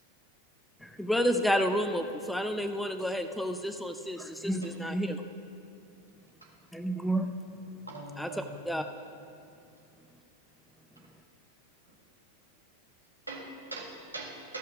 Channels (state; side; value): normal; both; correlation 0.73